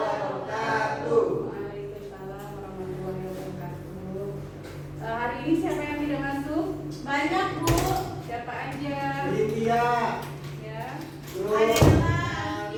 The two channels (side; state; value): both; identical; correlation 1.00